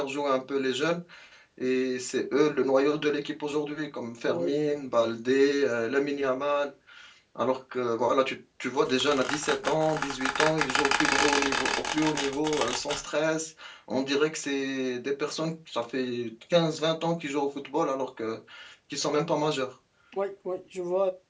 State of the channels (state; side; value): identical; both; correlation 1.00